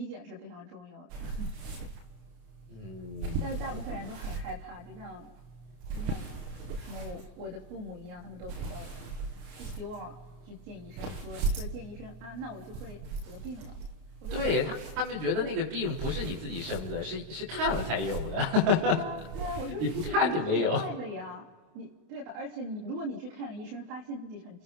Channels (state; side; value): late; left; 32 ms